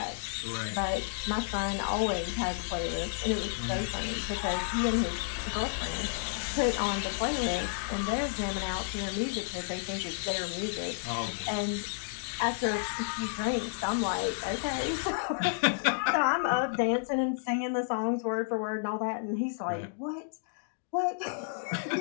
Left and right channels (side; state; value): right; silent; digital silence